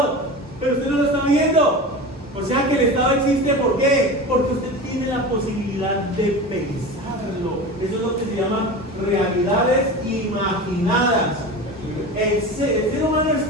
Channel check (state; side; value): normal; both; correlation 0.30